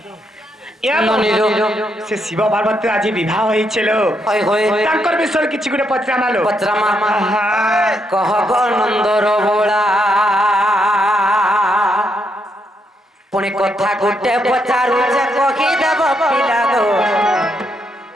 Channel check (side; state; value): both; normal; correlation 0.77